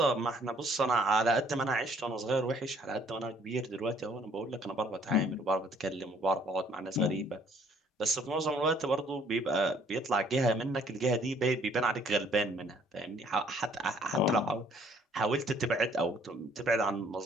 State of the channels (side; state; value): both; normal; correlation 0.61